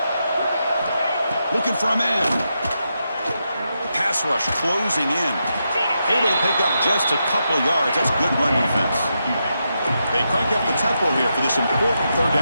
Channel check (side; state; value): both; inverted; correlation -0.85